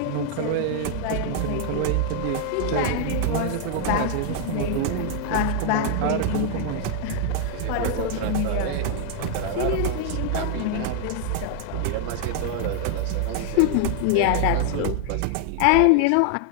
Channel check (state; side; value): different; both; correlation 0.00